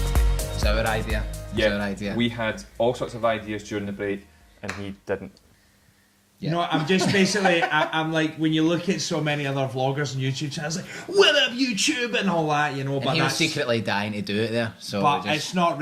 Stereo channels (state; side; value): identical; both; correlation 1.00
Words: It's our idea. Yeah, It's our idea. we had all sorts of ideas during the break, and he didn't. Yeah. You know, I'm just basically, I'm like, when you look at so many other vloggers and YouTube channels, like, what up YouTube and all that, you know, And but he was that's, secretly dying to do it there. So but we just, it's not